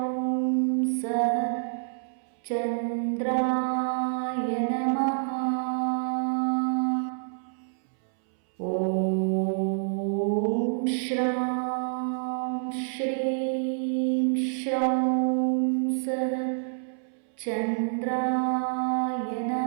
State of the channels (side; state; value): left; silent; 60 dB below the other